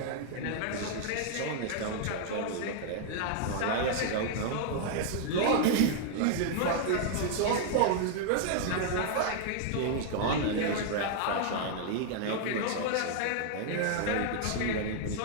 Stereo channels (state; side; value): different; both; correlation 0.00